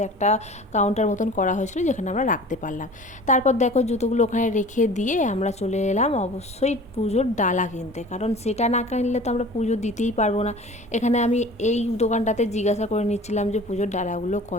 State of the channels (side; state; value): both; normal; correlation 0.42